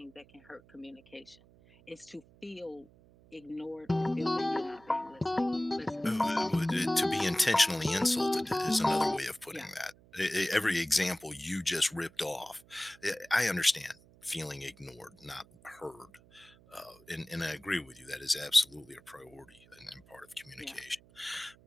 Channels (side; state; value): right; noise; hum, 26 dB below the sound